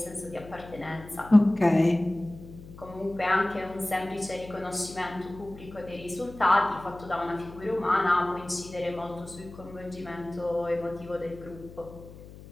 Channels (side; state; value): left; noise; hum, 17 dB below the sound